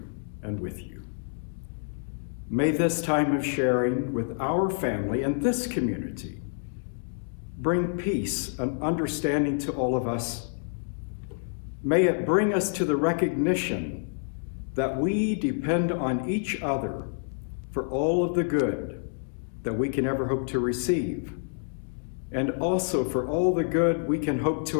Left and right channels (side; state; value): right; silent; digital silence